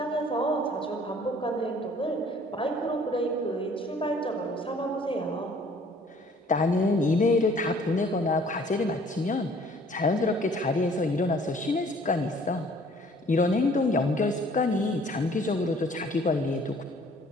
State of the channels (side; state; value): both; normal; correlation 0.55